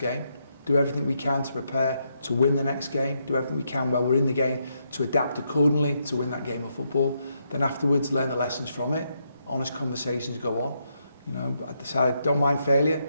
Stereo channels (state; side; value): inverted; both; correlation -0.79